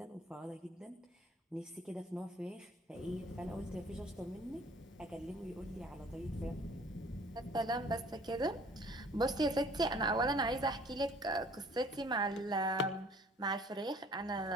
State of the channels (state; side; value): normal; both; correlation 0.54